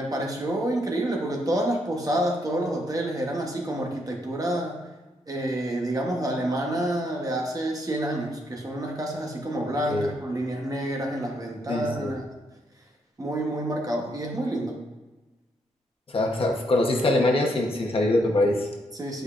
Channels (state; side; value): normal; both; correlation 0.75